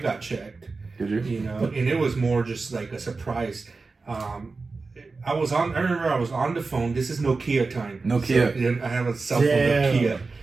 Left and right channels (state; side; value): quieter; left; 4.0 dB